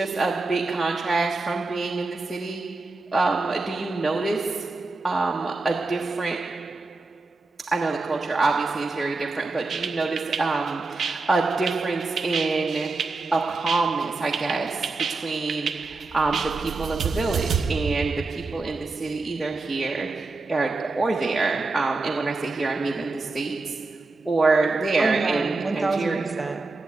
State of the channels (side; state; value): left; quieter; 3.5 dB